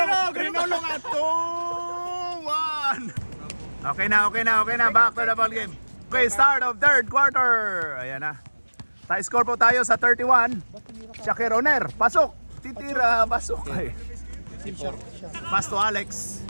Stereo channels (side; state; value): both; inverted; correlation -1.00